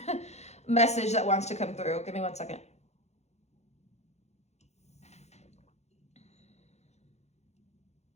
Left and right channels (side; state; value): right; late; 0.32 ms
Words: message that wants to come through. Give me 1 second.